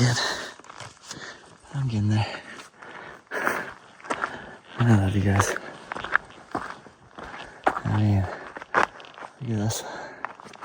I'm getting there. I love you guys. I mean, look at this.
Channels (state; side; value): identical; both; correlation 1.00